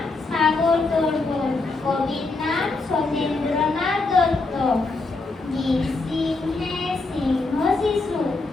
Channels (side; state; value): right; quieter; 3.5 dB